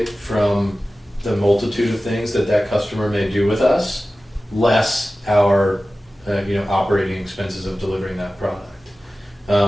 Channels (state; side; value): normal; both; correlation 0.96